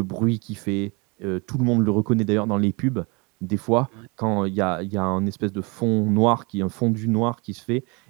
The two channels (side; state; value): left; quieter; 29.2 dB